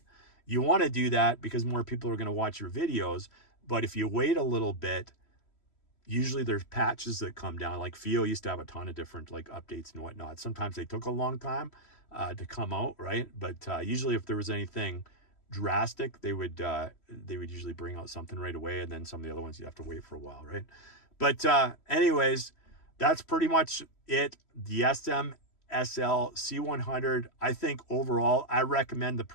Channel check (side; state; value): right; late; 3.1 ms